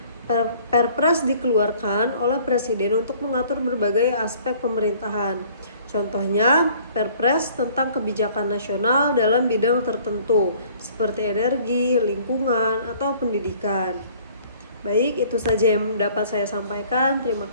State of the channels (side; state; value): both; inverted; correlation -0.55